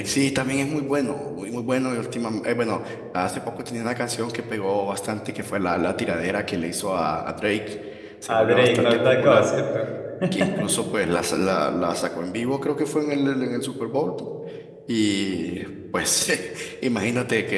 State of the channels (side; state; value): both; identical; correlation 1.00